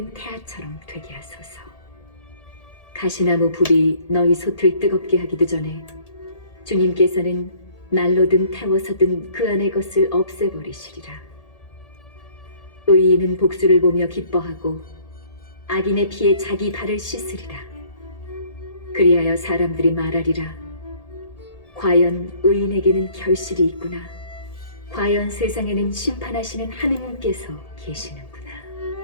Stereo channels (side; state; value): right; late; 1.8 ms